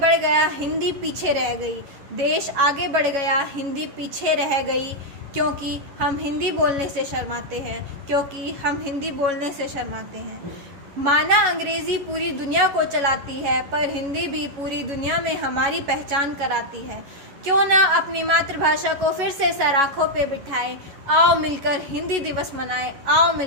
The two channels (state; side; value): late; left; 11 ms